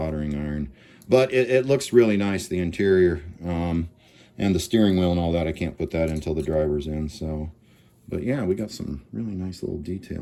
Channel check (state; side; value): identical; both; correlation 1.00